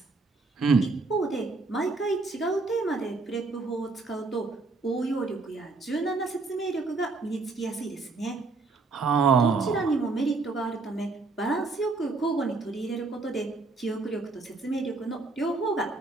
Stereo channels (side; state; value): left; quieter; 3.7 dB